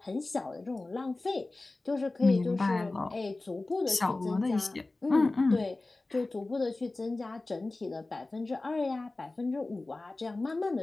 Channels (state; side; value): quieter; right; 3.1 dB